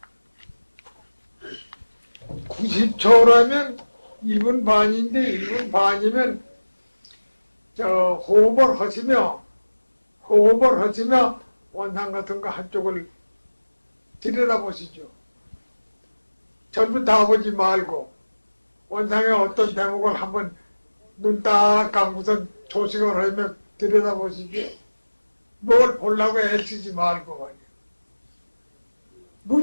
90초라면 1분 반인데 1분 반이면 호흡을 하시며 원상 같은 거 한쪽을 들여다보시죠. 전부 다 보지 말고 원상의 어떤 대목을 한번 눈 딱 감고선 조식을 하며 들여다보시죠. 뭘 보려고 애쓰지 말고 말이야.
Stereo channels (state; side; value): inverted; both; correlation -1.00